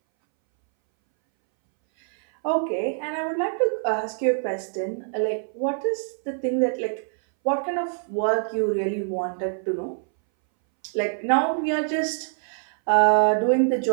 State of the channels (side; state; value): left; silent; 62 dB below the other